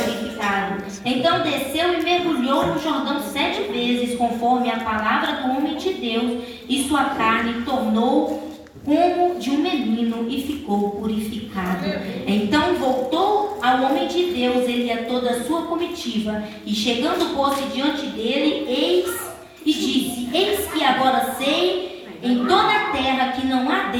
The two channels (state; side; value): identical; both; correlation 1.00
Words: Então desceu e mergulhou no Jordão 7 vezes, conforme a palavra do homem de Deus, e sua carne tornou como de um menino e ficou purificado. Então voltou ao homem de Deus, ele e a toda a sua comitiva, e chegando pôs-se diante dele, e disse: Eis que agora sei em toda a terra que não há